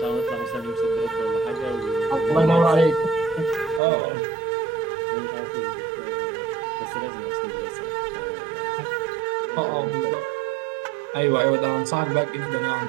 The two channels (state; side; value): drops out; left; at 3.8 s